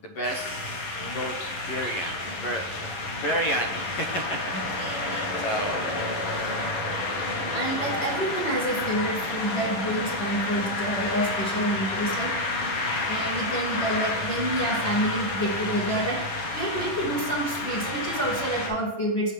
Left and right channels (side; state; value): right; late; 11 ms